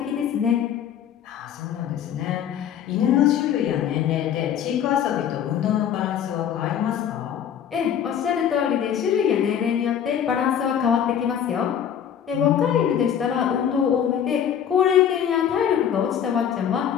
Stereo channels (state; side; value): quieter; right; 9.0 dB